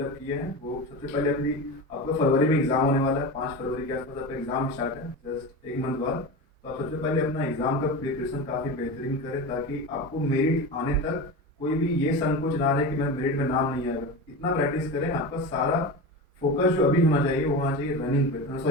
किए हैं, वो सबसे पहले अपनी, आपका फरवरी में एग्ज़ाम होने वाला है, 5 फरवरी के आसपास आपका एग्ज़ाम स्टार्ट है, जस्ट एक मंथ बाद। तो आप सबसे पहले अपना एग्ज़ाम का प्रिपरेशन काफ़ी बेहतरीन करें, ताकि आपको मेरिट आने तक कोई भी ये संकोच ना रहे कि मैं मेरिट में नाम नहीं आएगा। इतना प्रैक्टिस करें, आपका सारा फोकस जो अभी होना चाहिए वो होना चाहिए रनिंग पे,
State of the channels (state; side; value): normal; both; correlation 0.25